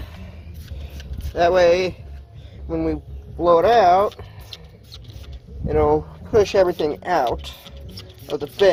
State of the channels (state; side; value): identical; both; correlation 1.00